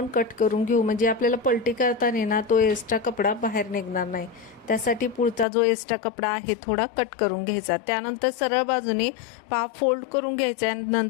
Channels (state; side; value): drops out; right; at 5.5 s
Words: कट करून घेऊ, म्हणजे आपल्याला पलटी करताना ना तो एक्स्ट्रा कपडा बाहेर निघणार नाही। त्यासाठी पुढचा जो एक्स्ट्रा कपडा आहे थोडा कट करून घ्यायचा। त्यानंतर सरळ बाजूने पहा फोल्ड करून घ्यायचा आणि